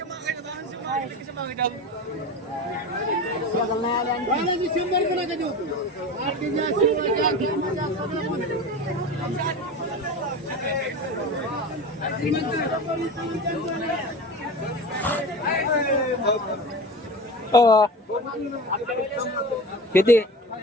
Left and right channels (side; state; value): both; normal; correlation 0.31